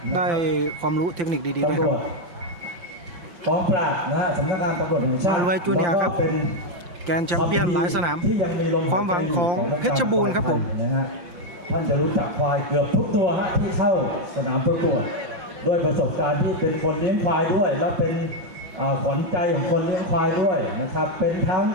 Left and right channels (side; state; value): left; late; 5.7 ms